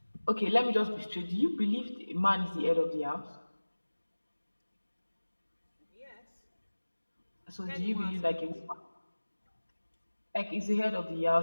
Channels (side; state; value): both; inverted; correlation -1.00